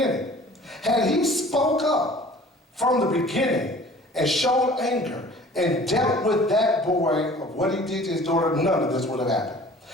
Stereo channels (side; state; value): both; normal; correlation 0.48